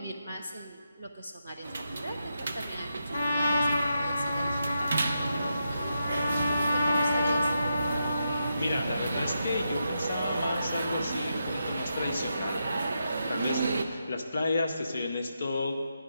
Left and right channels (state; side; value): inverted; both; correlation -0.84